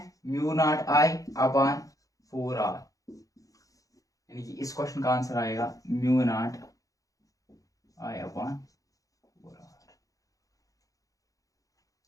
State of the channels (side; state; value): right; late; 0.17 ms